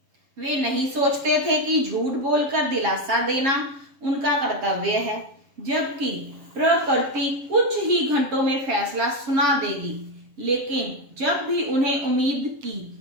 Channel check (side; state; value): left; late; 7.4 ms